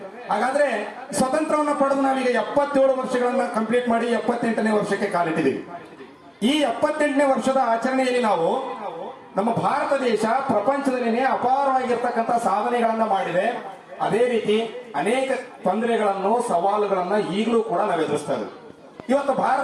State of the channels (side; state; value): both; identical; correlation 1.00